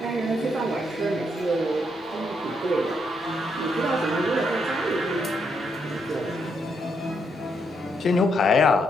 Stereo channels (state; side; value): normal; both; correlation 0.77